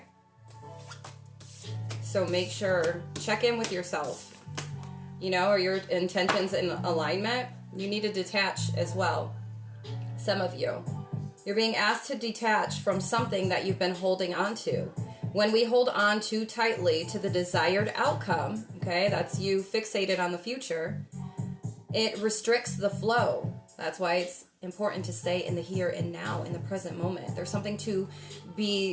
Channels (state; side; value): identical; both; correlation 1.00